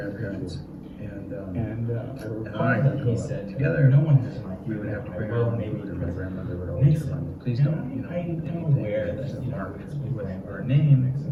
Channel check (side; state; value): both; identical; correlation 1.00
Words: and I would he go said together. no one We would have to bring our own food, and my grandmother would always remind me, please don't, I'm aware that mark with our name,